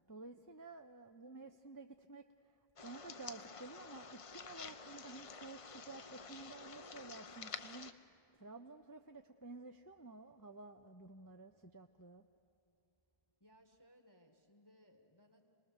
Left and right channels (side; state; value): right; late; 1.5 ms